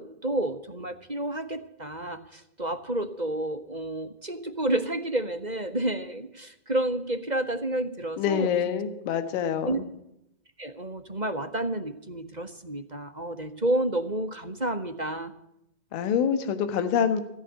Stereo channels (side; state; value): left; late; 2.0 ms